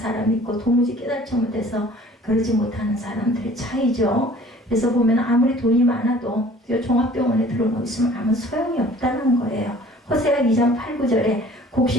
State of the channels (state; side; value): normal; both; correlation 0.50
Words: 있고 도무지 깨닫지 못해서 그러지 못하는 사람들의 차이죠. 그래서 보면 아무리 돈이 많아도 종합병원에 들어놓고 있으면 아무 소용이 없다는 거예요. 호세아 2장 8, 9절에